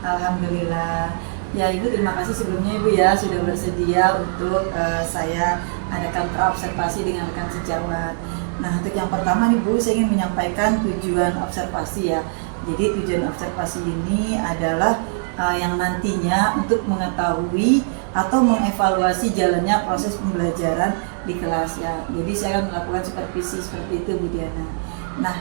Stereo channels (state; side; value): silent; left; digital silence